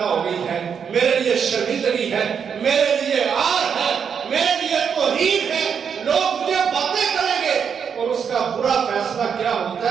ہو گئی ہے، میرے لیے شرمندگی ہے، میرے لیے عار ہے، میرے لیے توہین ہے، لوگ مجھے باتیں کریں گے، اور اس کا برا فیصلہ کیا ہوتا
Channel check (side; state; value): left; quieter; 7.0 dB